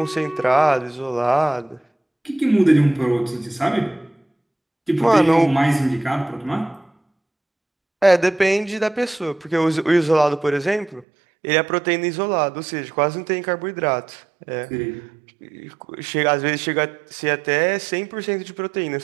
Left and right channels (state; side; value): drops out; left; at 11.1 s